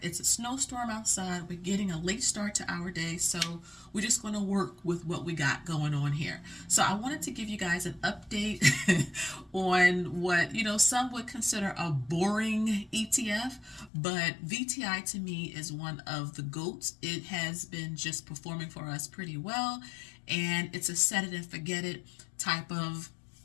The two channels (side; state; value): right; drops out; at 13.9 s